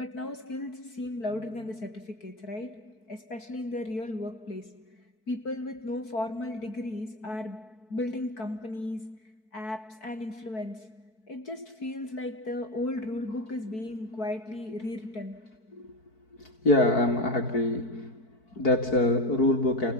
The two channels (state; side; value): late; right; 4.6 ms